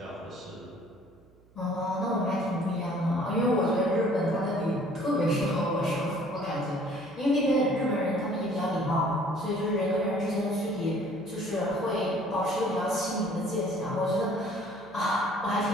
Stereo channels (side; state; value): right; noise; hum, 29 dB below the sound